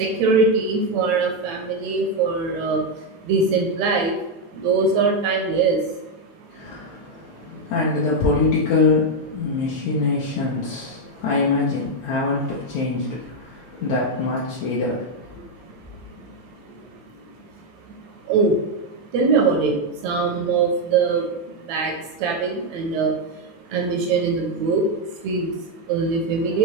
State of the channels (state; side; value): normal; both; correlation 0.03